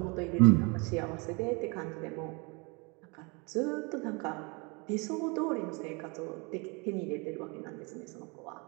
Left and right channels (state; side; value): quieter; left; 30.0 dB